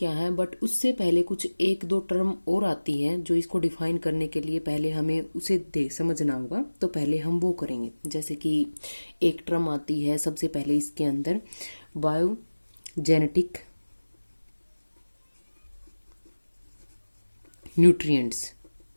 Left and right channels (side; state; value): both; inverted; correlation -1.00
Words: है, बट उससे पहले कुछ एक दो टर्म और आती हैं जो इसको डिफाइन करने के लिए पहले हमें उसे समझना होगा। तो पहले हम वो करेंगे। जैसे कि एक टर्म आती है सबसे पहले इसके अंदर बायोजेनेटिक न्यूट्रिएंट्स।